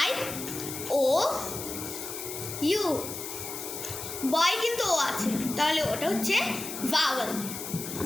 I, O, U। বয় কিন্তু ও আছে, তাহলে ওটা হচ্ছে ভাওয়েল।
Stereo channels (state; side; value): noise; left; hiss, 7 dB below the sound